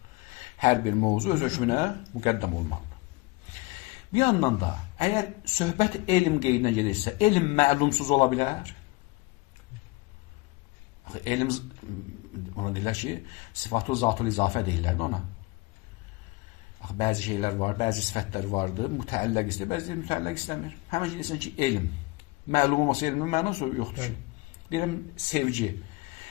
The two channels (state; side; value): quieter; right; 23.0 dB